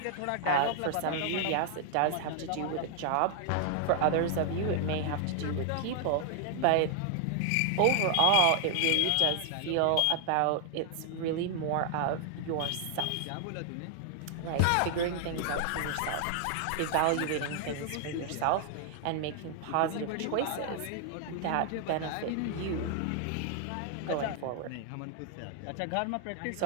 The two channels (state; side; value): different; both; correlation 0.00